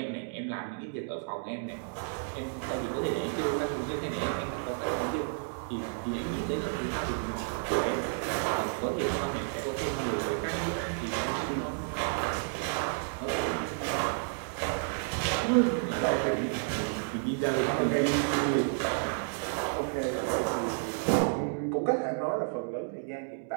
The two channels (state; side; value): silent; left; digital silence